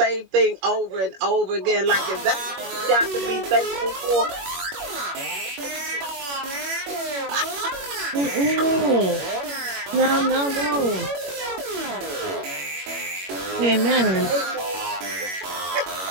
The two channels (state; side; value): late; left; 21 ms